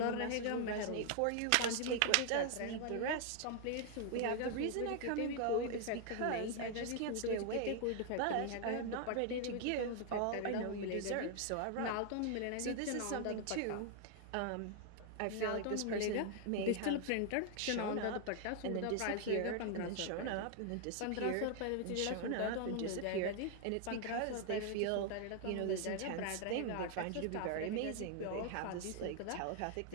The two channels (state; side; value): different; both; correlation 0.00